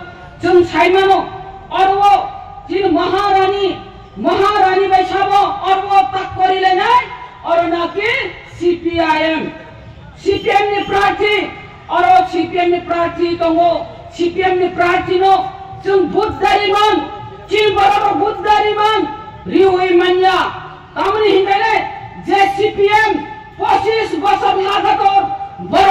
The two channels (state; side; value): identical; both; correlation 1.00